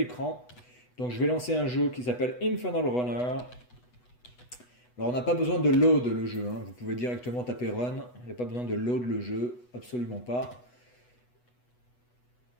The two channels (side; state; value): right; late; 8.1 ms